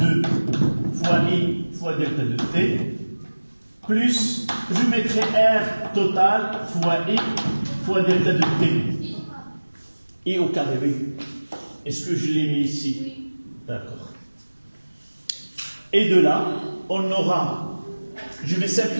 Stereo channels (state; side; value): inverted; both; correlation -1.00